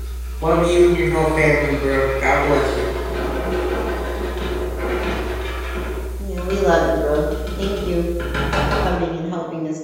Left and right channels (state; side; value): identical; both; correlation 1.00